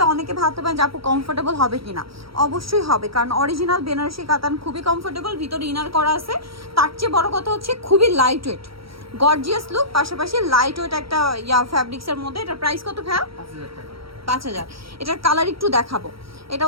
অনেকে ভাবতে পারেন যে আপু কমফোর্টেবল হবে কিনা। অবশ্যই হবে, কারণ অরিজিনাল বেনারসি কাতান খুবই কমফোর্টেবল, ভিতরে ইনার করা আছে। তার চেয়ে বড় কথা হচ্ছে খুবই লাইট ওয়েট, গর্জিয়াস লুক, পাশাপাশি লাইট ওয়েট একটা ফ্যাব্রিক্সের মধ্যে। এটার প্রাইস কত ভাইয়া? 5000 টাকা। 5000। এটার কালার একটু দেখাবো। এটা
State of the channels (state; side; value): late; left; 0.75 ms